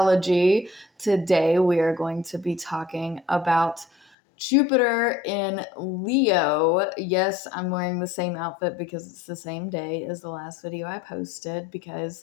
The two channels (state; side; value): drops out; right; at 4.0 s